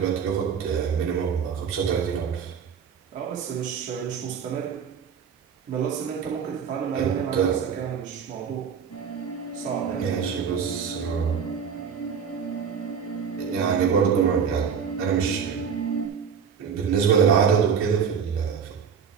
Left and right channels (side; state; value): left; quieter; 6.9 dB